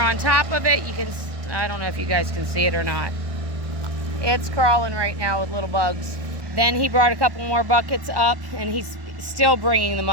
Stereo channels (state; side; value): late; left; 1.2 ms